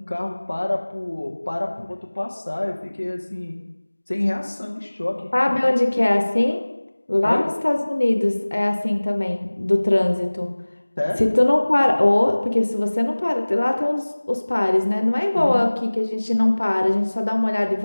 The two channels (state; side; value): inverted; both; correlation -1.00